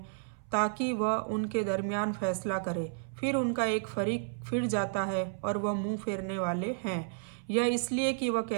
ताकि वह उनके दरमियान फैसला करे? फिर उनका एक फरीक फिर जाता है और वह मुंह फेरने वाले हैं। यह इसलिए कि वह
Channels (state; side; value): silent; left; 57 dB below the other